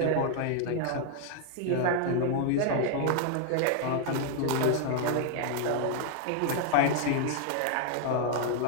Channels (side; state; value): both; different; correlation 0.00